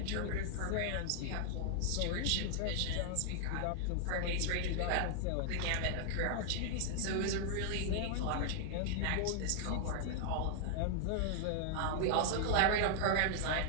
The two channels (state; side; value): different; both; correlation -0.01